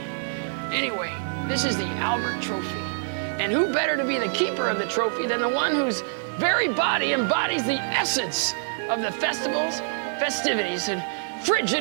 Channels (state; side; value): silent; left; digital silence